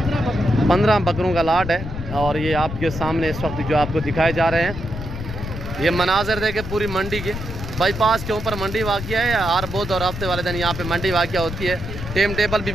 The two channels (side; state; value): left; noise; rumble, 8 dB below the sound